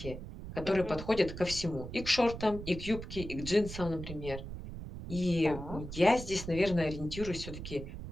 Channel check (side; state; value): right; noise; rumble, 9 dB below the sound